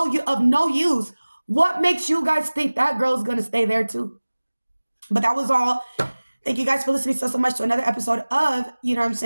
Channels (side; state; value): both; inverted; correlation -1.00